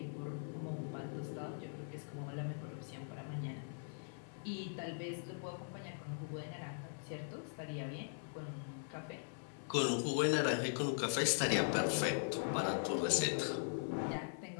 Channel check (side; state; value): right; silent; 50 dB below the other